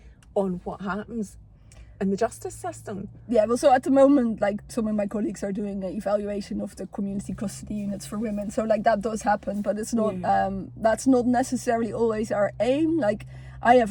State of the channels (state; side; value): identical; both; correlation 1.00